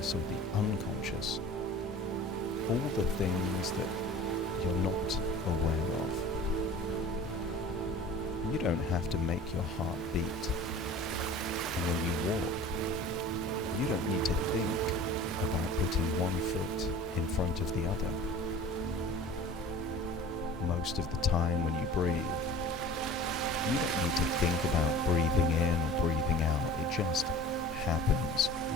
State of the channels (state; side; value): normal; both; correlation 0.42